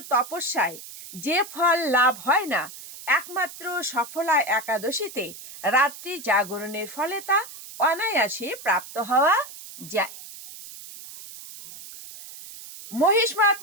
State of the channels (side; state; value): right; noise; hiss, 15 dB below the sound